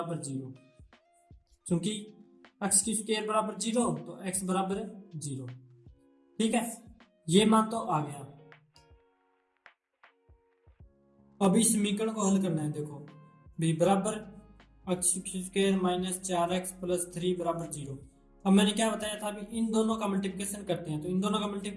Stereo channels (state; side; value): identical; both; correlation 1.00